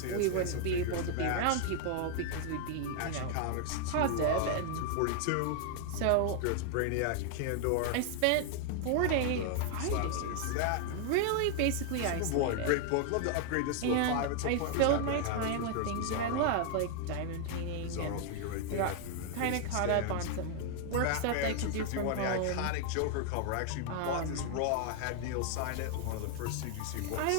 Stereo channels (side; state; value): both; different; correlation 0.00